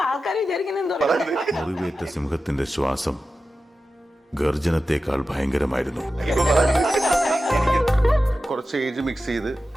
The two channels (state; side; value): normal; both; correlation 0.93